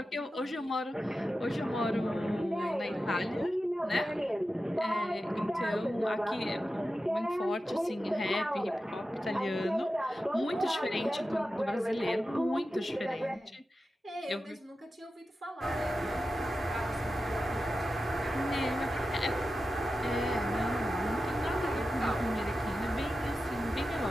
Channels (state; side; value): normal; both; correlation 0.92